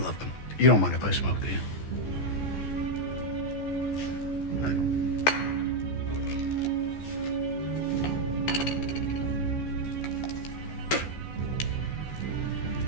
him. You don't mind if I smoke, do you?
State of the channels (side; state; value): right; late; 14 ms